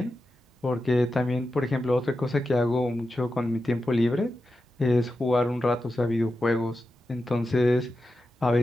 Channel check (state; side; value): normal; both; correlation 0.90